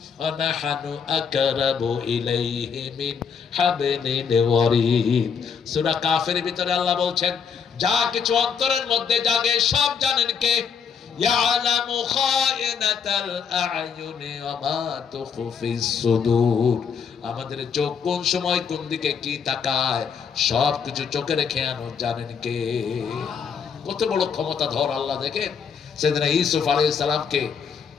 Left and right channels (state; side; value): quieter; right; 6.6 dB